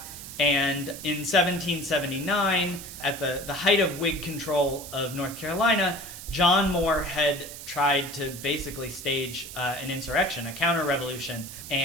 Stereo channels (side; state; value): right; noise; hiss, 12 dB below the sound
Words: And in 1779, at the height of Whig control of North Carolina, John Moore had tried to basically stage an insurrection, a counter-revolution,